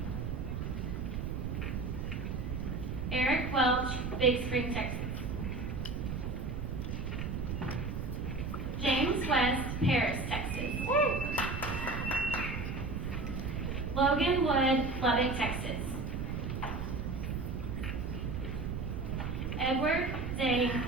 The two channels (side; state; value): right; noise; rumble, 3 dB below the sound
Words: Eric Welch, Big Spring, Texas. James West, Paris, Texas. Logan Wood, Lubbock, Texas. Edward Zane,